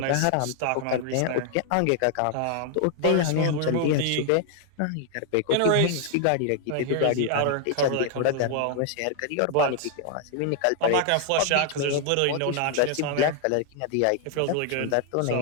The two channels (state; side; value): different; both; correlation 0.00